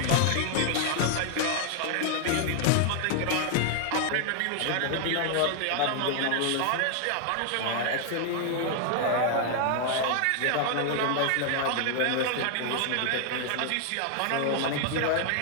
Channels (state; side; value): different; both; correlation 0.00